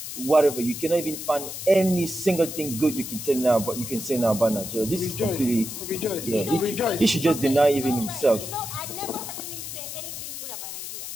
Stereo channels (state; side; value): noise; left; hiss, 8 dB below the sound